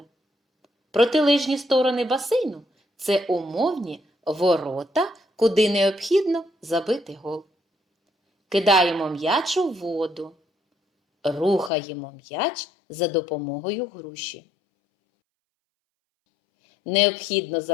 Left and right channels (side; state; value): right; drops out; at 11.7 s